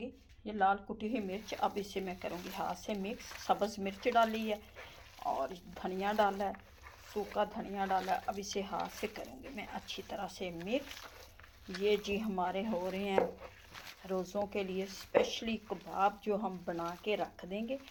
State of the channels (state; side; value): identical; both; correlation 1.00